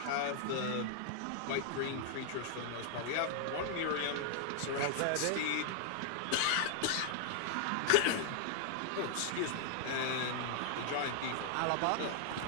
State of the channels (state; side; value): different; both; correlation 0.00